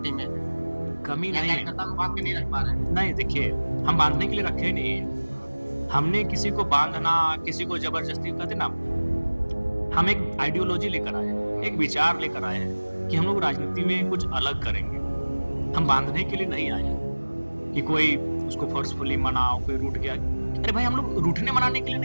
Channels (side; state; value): both; inverted; correlation -1.00